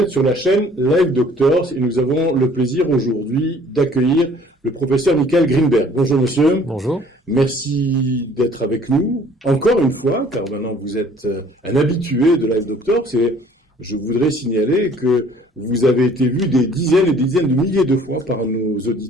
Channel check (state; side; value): normal; both; correlation 0.55